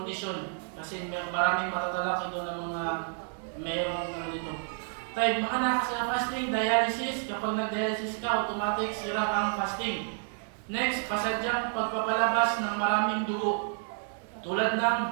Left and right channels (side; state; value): left; silent; 58 dB below the other